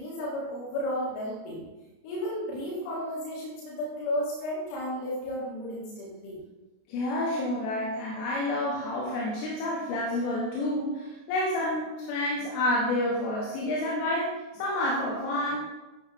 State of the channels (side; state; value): right; late; 32 ms